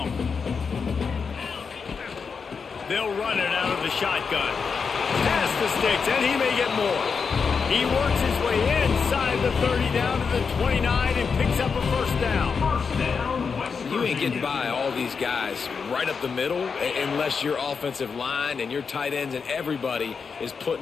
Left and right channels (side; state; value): right; quieter; 5.6 dB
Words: They'll run it out of the shotgun. Past the sticks, and he may get more. He works his way inside the 30 down to the 29 and picks up a first down. You ain't getting by all these guys right up the middle unless your offensive line and your tight ends and everybody is